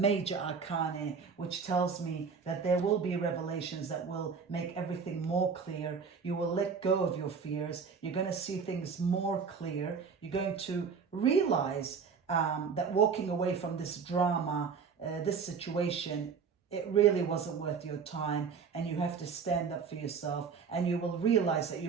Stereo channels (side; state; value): left; quieter; 5.9 dB